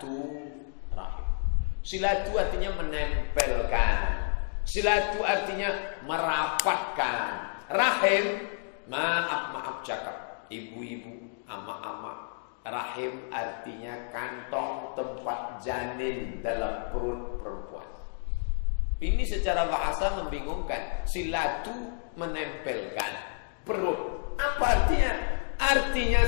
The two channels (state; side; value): silent; right; 58 dB below the other